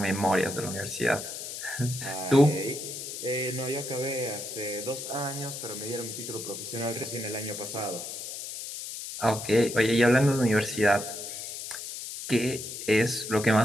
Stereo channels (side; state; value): left; noise; hiss, 8 dB below the sound